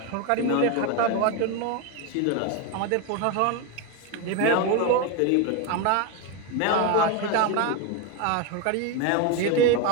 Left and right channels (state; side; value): different; both; correlation 0.02